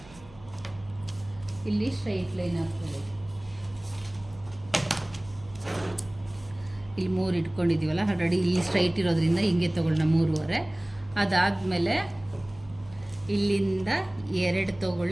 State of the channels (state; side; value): noise; right; hum, 22 dB below the sound